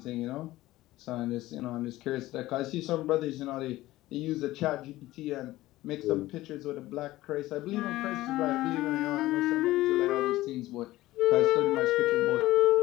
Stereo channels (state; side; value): quieter; right; 16.9 dB